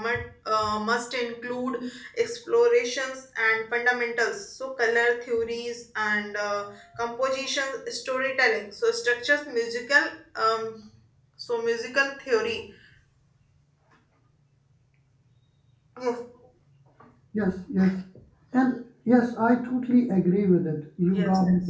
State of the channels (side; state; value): both; identical; correlation 1.00